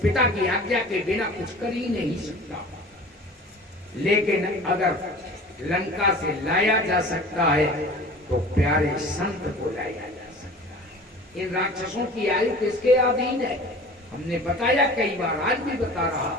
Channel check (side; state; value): both; normal; correlation 0.41